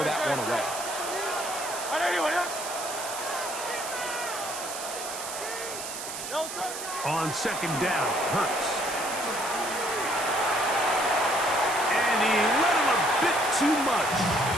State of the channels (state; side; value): noise; right; hiss, 7 dB below the sound